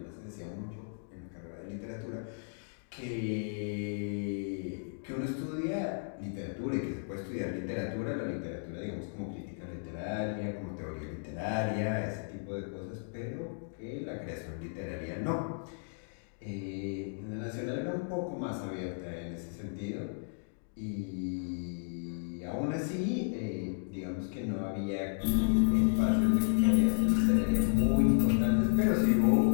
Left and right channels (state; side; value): silent; right; digital silence